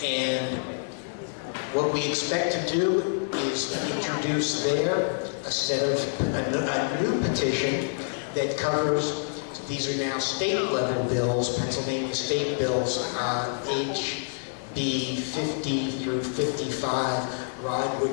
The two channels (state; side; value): silent; right; 60 dB below the other